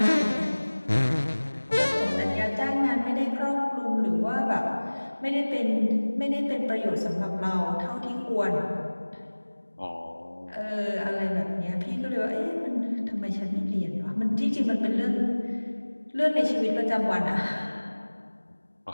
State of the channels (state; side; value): inverted; both; correlation -1.00